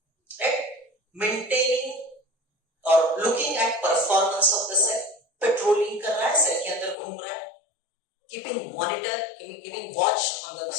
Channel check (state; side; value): drops out; right; at 7.0 s